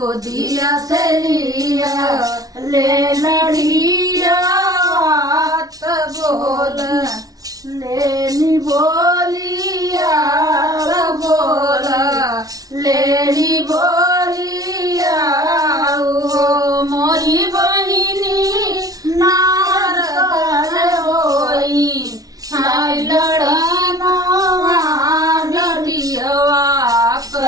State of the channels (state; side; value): late; left; 0.18 ms